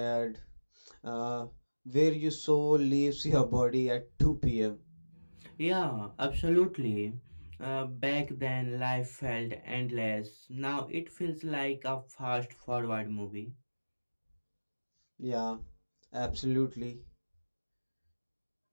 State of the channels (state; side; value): inverted; both; correlation -1.00